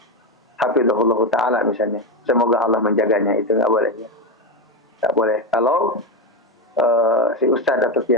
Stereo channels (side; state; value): both; normal; correlation 0.12